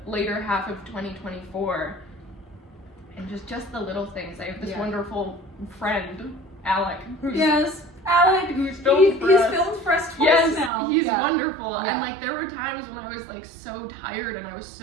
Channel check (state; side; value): drops out; left; at 10.7 s